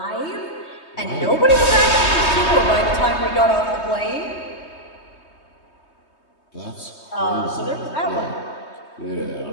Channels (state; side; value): late; right; 3.2 ms